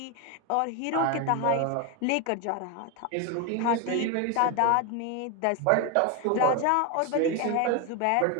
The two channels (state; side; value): different; both; correlation 0.02